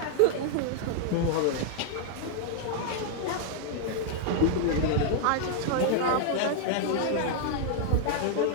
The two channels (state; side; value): different; both; correlation -0.01